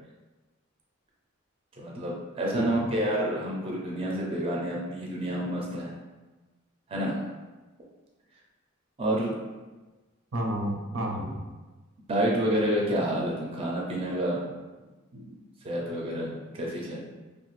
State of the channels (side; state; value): both; normal; correlation 0.44